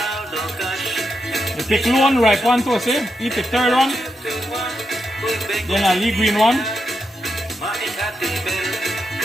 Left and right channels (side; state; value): both; normal; correlation 0.84